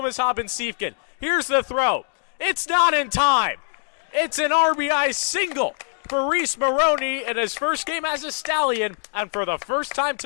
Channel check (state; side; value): silent; right; digital silence